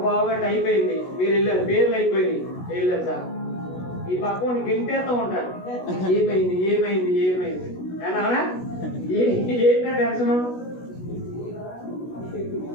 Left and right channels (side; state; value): right; late; 16 ms